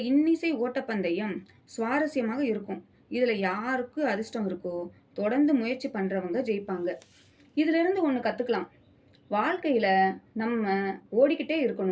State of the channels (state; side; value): identical; both; correlation 1.00